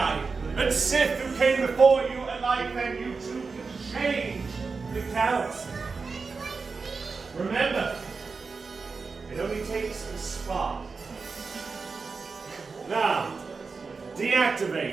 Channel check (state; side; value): quieter; left; 4.6 dB